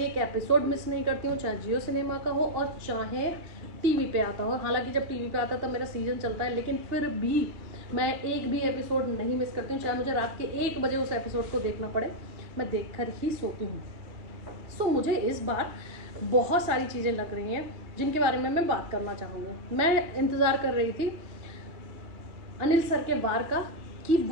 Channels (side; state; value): left; late; 3.0 ms